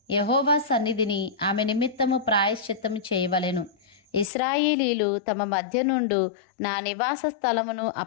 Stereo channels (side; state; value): right; drops out; at 4.3 s